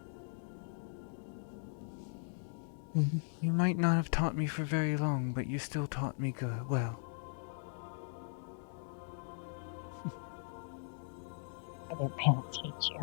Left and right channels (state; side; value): silent; right; digital silence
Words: You might not have taught me for very long, but you still taught me good. Well. I didn't teach